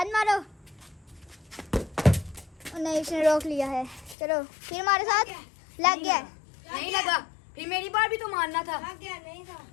मारो। नहीं उसने रोक लिया है। चलो फिर मारो 7। लग गया। नहीं लगा। फिर मेरी बार भी तो मारना था। लग गया। नहीं था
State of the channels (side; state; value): right; drops out; at 4.2 s